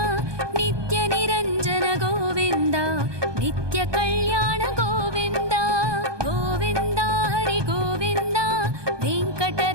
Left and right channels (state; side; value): late; left; 1.2 ms